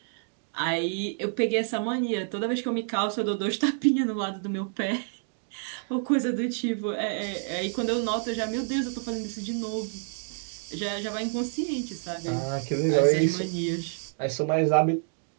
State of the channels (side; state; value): left; silent; digital silence